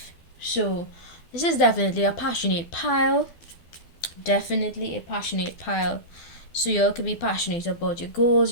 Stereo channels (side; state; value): right; late; 12 ms